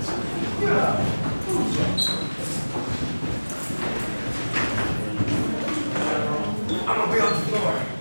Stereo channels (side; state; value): both; inverted; correlation -1.00